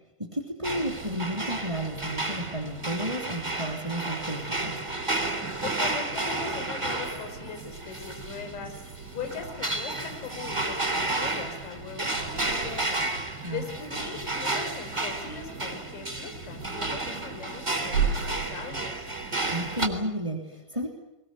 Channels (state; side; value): late; left; 1.5 ms